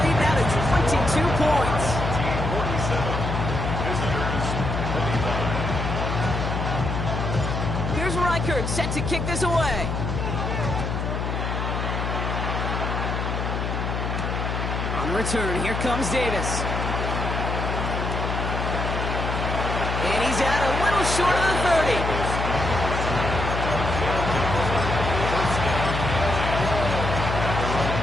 lead now to 22 points. 47, visitors 25. Here's Reichert set to kick this away. On the return, here comes Davis. And he's out a little short of the 30.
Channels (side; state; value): left; noise; hum, 2 dB below the sound